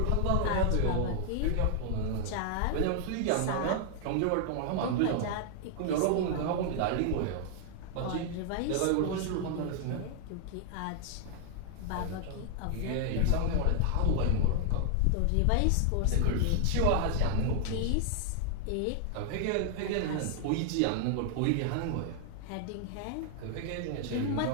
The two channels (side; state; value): both; different; correlation 0.00